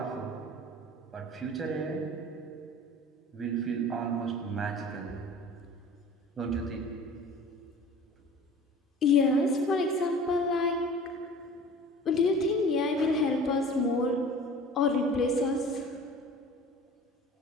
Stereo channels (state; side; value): normal; both; correlation 0.43